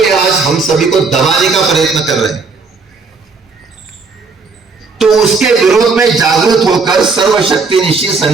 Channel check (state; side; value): quieter; left; 4.4 dB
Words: आज हम सभी को दबाने का प्रयत्न कर रहे हैं। तो उसके विरोध में जागरूक होकर सर्वशक्तिनिशी